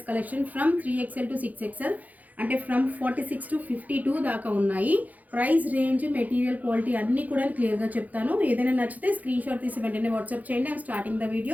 collection from 3XL to 6XL, అంటే ఫ్రమ్ 46 టు 52 దాకా ఉన్నాయి. ప్రైస్ రేంజ్, మెటీరియల్ క్వాలిటీ అన్నీ కూడా క్లియర్గా చెప్తాను. ఏదైనా నచ్చితే స్క్రీన్ షాట్ తీసి వెంటనే వాట్సాప్ చేయండి. I'm starting the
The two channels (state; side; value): late; left; 0.079 ms